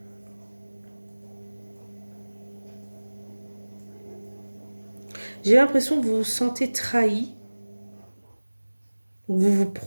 J'ai l'impression que vous vous sentez trahi. Vous vous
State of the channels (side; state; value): both; inverted; correlation -1.00